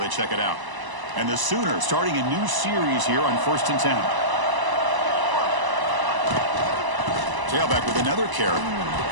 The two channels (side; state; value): left; late; 1.0 ms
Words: they check it out. And the Sooners starting a new series here on 1st and 10. Tailback with another carry.